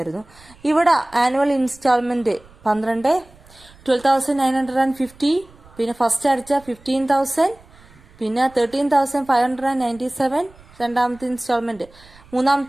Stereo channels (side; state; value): right; noise; rumble, 25 dB below the sound